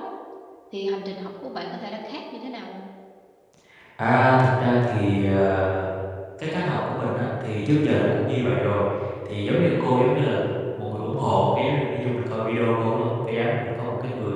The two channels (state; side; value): identical; both; correlation 1.00